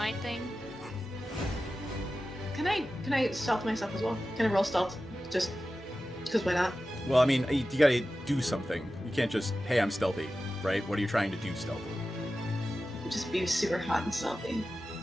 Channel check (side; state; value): both; normal; correlation 0.94